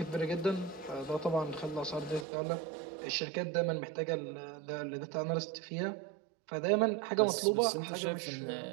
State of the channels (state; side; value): drops out; left; at 2.2 s